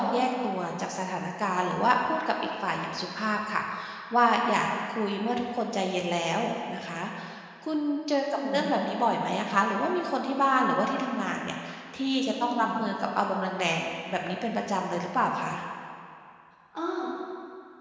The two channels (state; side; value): identical; both; correlation 1.00